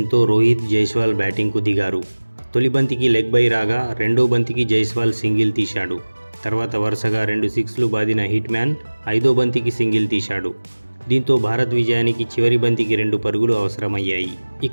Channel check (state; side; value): inverted; both; correlation -1.00